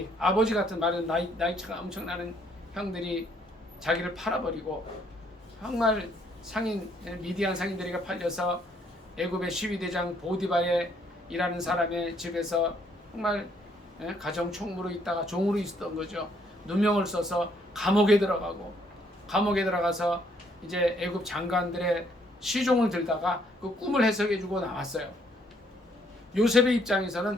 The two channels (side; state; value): both; normal; correlation 0.68